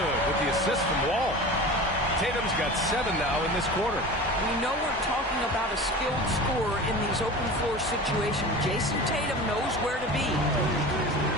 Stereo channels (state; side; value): normal; both; correlation 0.34